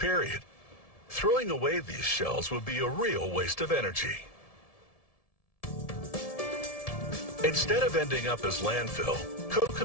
Throwing away these shells would be a real waste of energy. Instead of ending up as landfill,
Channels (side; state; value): right; late; 1.7 ms